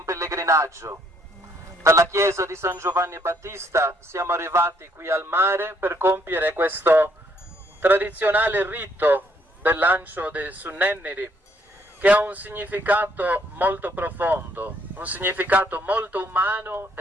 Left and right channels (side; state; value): both; normal; correlation 0.68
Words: pellegrinaggio. Dalla chiesa di San Giovanni Battista siamo arrivati qui al mare per compiere questo tradizionale rito del lancio dei Sunnenniri, che ha un significato molto profondo, un significato molto umano